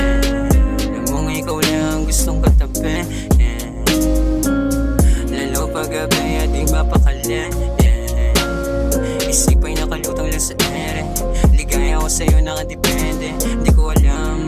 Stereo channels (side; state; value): both; identical; correlation 1.00